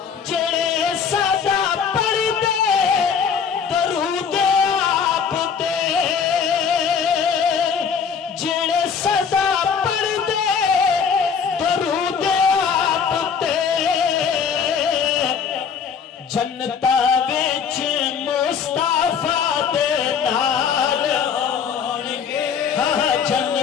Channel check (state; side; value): quieter; right; 6.7 dB